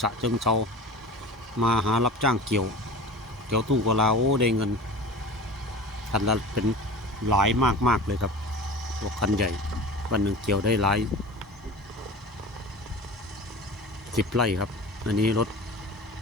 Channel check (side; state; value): both; normal; correlation 0.35